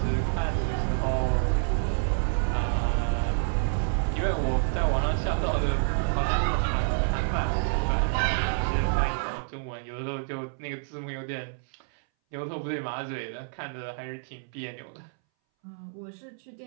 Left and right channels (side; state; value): left; silent; 59 dB below the other